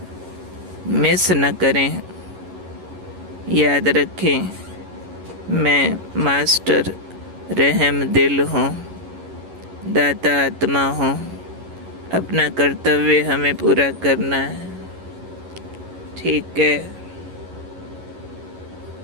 मिस न करें। याद रखें, मैं मास्टर रहम दिल हूँ, दाता आत्मा हूँ। अपना कर्तव्य हमें पूरा करना है। ठीक है,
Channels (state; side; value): late; left; 11 ms